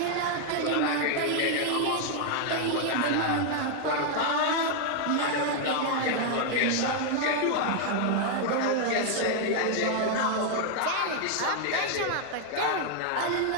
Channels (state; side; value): different; both; correlation 0.00